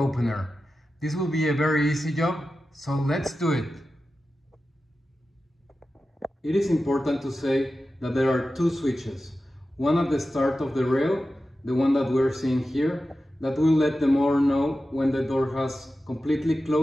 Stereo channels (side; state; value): both; normal; correlation 0.93